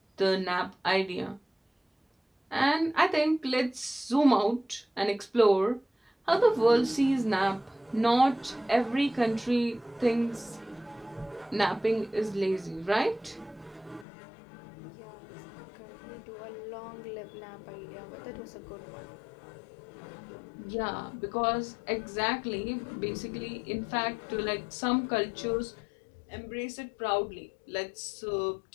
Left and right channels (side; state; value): right; drops out; at 14.1 s